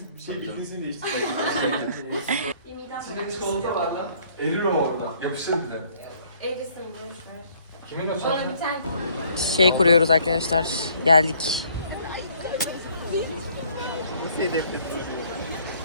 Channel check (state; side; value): inverted; both; correlation -0.61